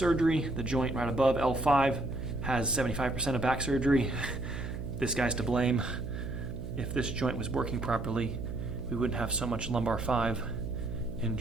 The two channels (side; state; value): right; noise; hum, 7 dB below the sound